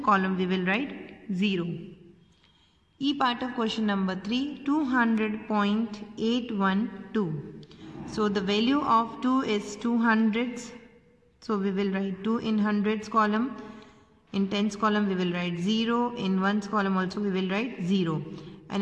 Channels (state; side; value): identical; both; correlation 1.00